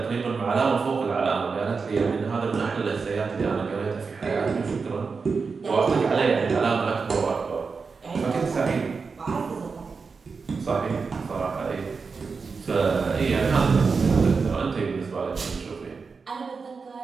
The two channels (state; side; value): quieter; left; 4.9 dB